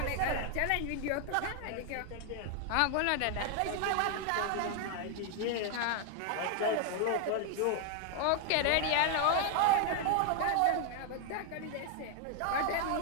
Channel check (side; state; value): both; different; correlation 0.00